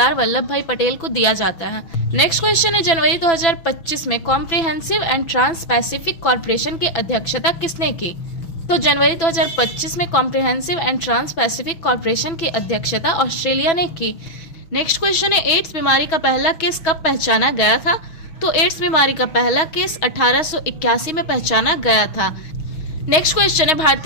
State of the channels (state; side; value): late; right; 6.3 ms